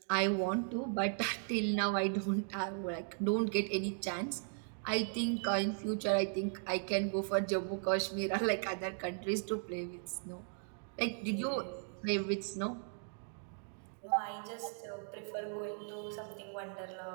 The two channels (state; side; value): silent; left; 53 dB below the other